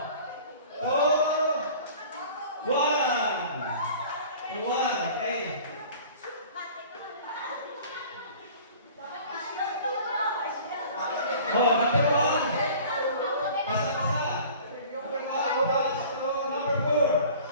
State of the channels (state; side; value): inverted; both; correlation -0.45